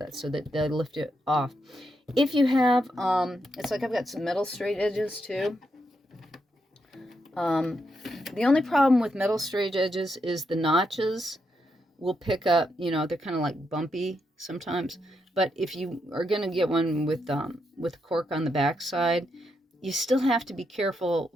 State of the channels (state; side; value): normal; both; correlation 0.81